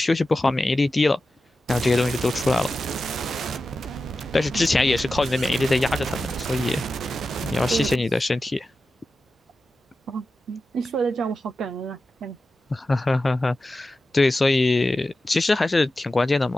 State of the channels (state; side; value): normal; both; correlation 0.93